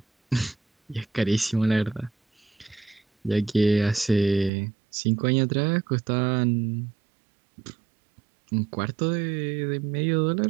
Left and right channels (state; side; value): drops out; left; at 4.5 s